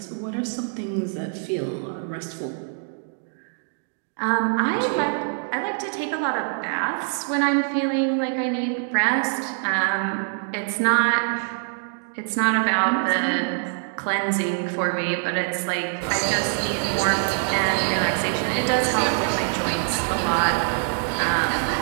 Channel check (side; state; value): left; silent; 58 dB below the other